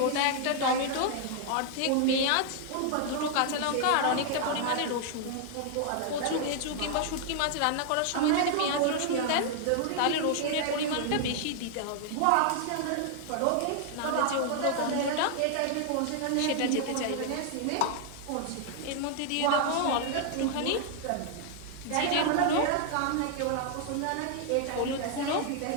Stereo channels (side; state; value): both; different; correlation 0.00